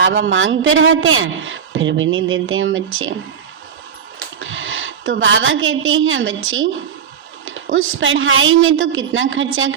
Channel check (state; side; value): quieter; left; 7.5 dB